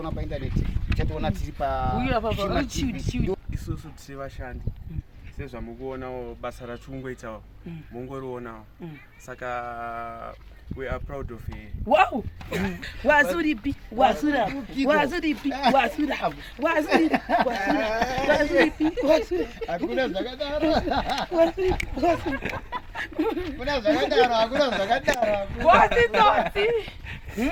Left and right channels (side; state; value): both; identical; correlation 1.00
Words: paindaneti chatoona tiri isusu tiri vashandi sezvamukuonawo basa rachungoitawo mungorionawo. Saka We are proud of her. Wow. Wazuripi, wazura, wazuripi, wazura, wazuripi, wazuripi, wazura. Hakuna zakadaro. Kuna zakadaro. What is that?